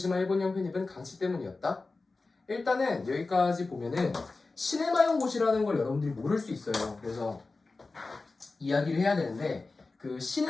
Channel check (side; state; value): right; quieter; 3.6 dB